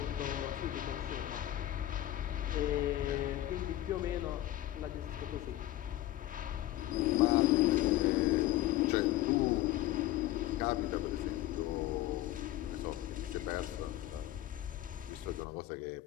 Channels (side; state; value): right; quieter; 14.7 dB